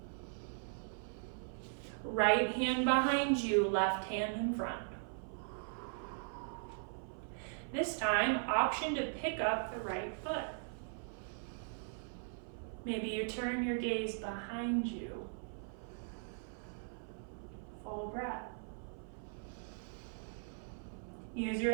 Right hand behind you, left hand in front. This time, option to pick up the right foot. Maybe you turn your gaze behind you. Full breath. Use your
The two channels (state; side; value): silent; left; 51 dB below the other